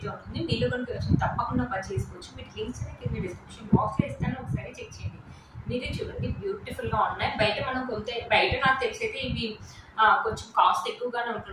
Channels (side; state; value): both; identical; correlation 1.00